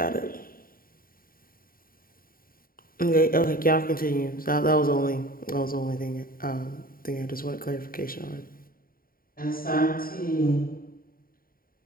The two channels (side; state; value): right; late; 0.42 ms